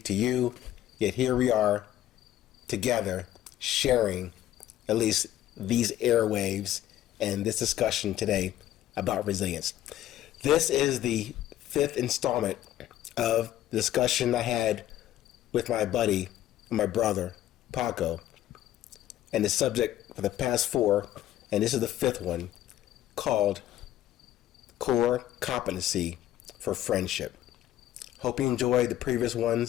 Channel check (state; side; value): quieter; right; 12.9 dB